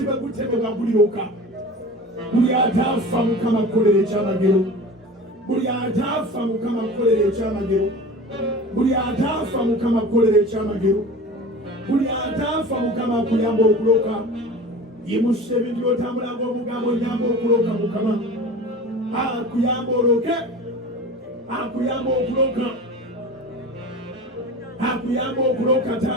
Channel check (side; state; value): both; normal; correlation 0.36